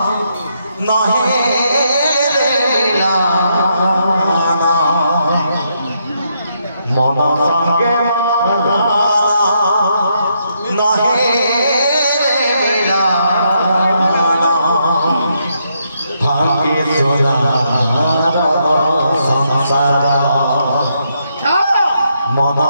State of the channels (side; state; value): both; inverted; correlation -0.77